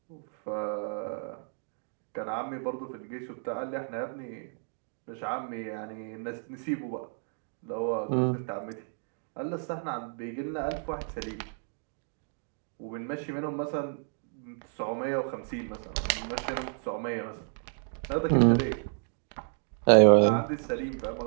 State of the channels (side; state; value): left; silent; 57 dB below the other